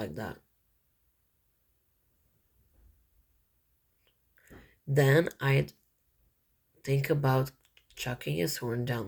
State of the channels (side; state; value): both; identical; correlation 1.00